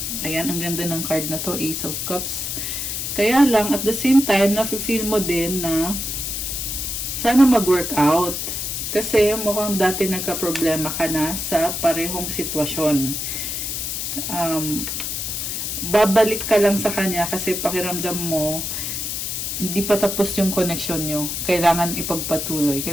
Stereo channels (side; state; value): left; noise; hiss, 3 dB below the sound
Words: Ayan, ang ganda ng card na to, Ace of Cups. Kaya lang, at the same time, nafe-feel mo din na sana mag-work out. Kasi mukhang dati nagka-problema ka na sa parehong sitwasyon. Babalik ka lang sa kanya kasi pakiramdam mo, hindi pa tapos yung connection nyo. Kailangan ipagpatuloy.